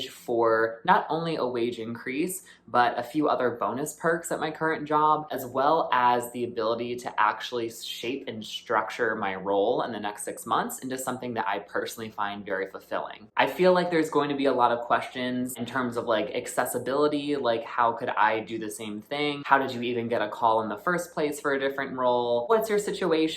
for not only a wage increase, but a few other bonus perks at my current job, as well as the ability to actually shape and structure my role in the next 6 months into something that I personally find very fulfilling. I feel like there's going to be a lot of questions in terms of like accessibility, like how could I do the same thing? How did you even get a call in the first place for a different role? What's your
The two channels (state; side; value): identical; both; correlation 1.00